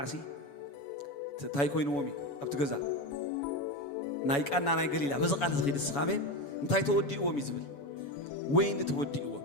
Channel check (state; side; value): late; right; 7.1 ms